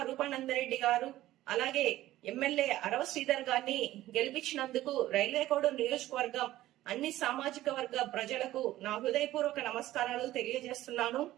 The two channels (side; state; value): left; quieter; 15.1 dB